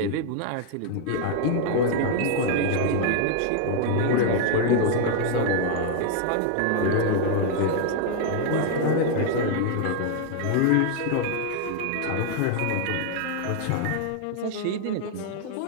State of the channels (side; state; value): both; different; correlation 0.00